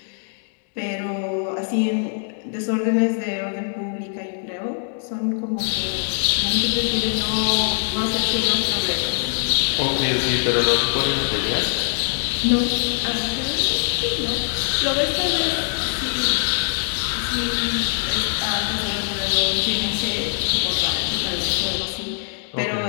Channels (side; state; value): right; silent; digital silence